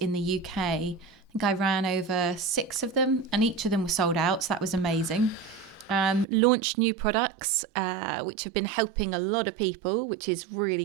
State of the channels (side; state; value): left; drops out; at 6.2 s